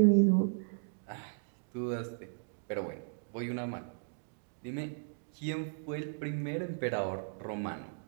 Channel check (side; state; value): left; silent; digital silence